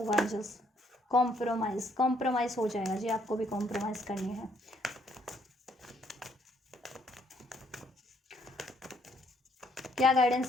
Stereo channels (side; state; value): both; normal; correlation 0.68